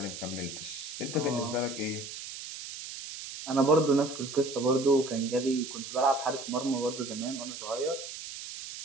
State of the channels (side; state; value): right; noise; hiss, 10 dB below the sound